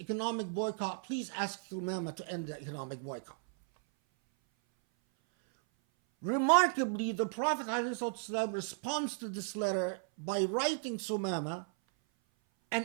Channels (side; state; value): left; silent; 54 dB below the other